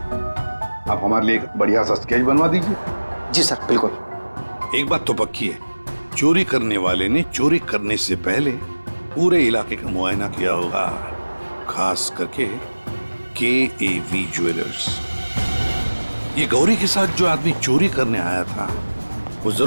आप हमारे लिए एक बढ़िया सा स्केच बनवा दीजिए। जी सर, बिल्कुल। एक बात तो पक्की है, चोरी करने वाले ने चोरी करने से पहले पूरे इलाके का मुआयना किया होगा, खास करके KAV ज्वेलर्स। ये गौरी के साथ जो आदमी चोरी करने आया था वो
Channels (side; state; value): both; inverted; correlation -1.00